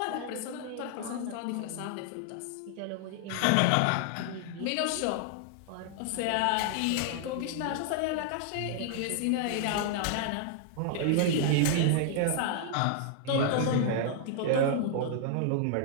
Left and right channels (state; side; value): different; both; correlation 0.00